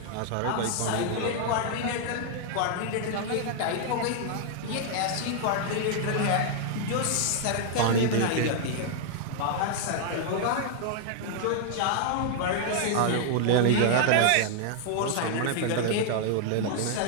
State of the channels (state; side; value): different; both; correlation 0.00